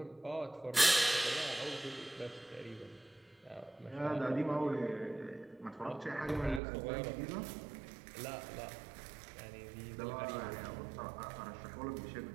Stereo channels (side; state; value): left; drops out; at 6.6 s